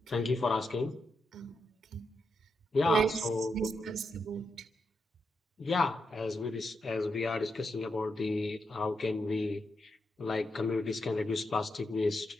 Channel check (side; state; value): both; normal; correlation 0.84